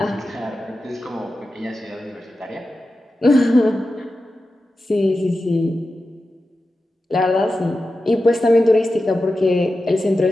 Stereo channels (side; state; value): both; normal; correlation 0.92